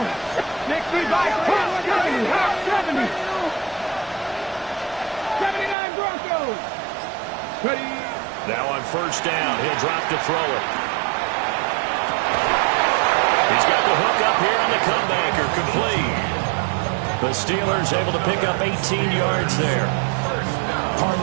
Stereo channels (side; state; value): left; drops out; at 5.8 s